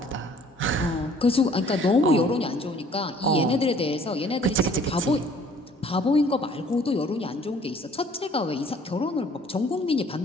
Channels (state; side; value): normal; both; correlation 0.56